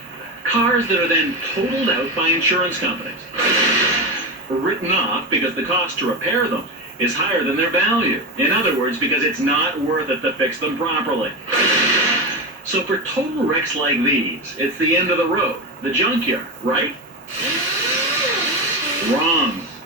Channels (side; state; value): both; normal; correlation 0.18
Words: Cars that are then totaled out by insurance companies, written off because the cost to repair them is higher than their value. In other words, because it's not worth it to fix them properly. So for total wrecks like these, it's the end of the road, the junkyard, right? Wrong.